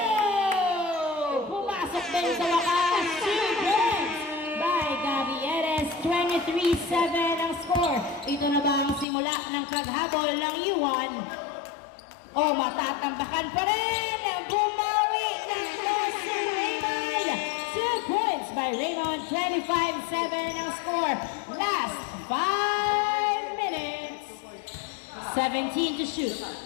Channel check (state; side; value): drops out; right; at 9.1 s